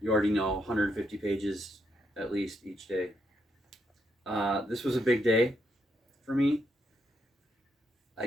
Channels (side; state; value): both; normal; correlation 0.78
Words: already know, 150 pages at least each day. This was a big day for me. I